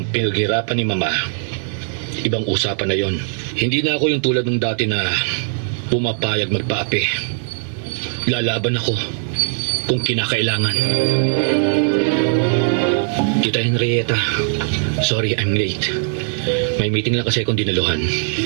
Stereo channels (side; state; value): left; silent; digital silence